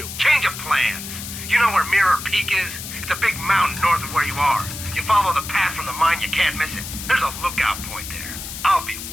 change of plans. You know where Mirror Peak is? It's a big mountain north of where you are. You follow the path from the mine, you can't miss it. There's a lookout point there. I'll be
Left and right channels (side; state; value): left; noise; hiss, 9 dB below the sound